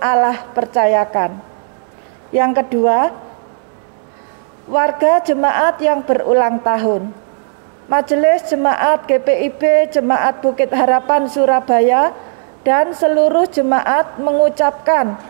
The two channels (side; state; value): left; silent; digital silence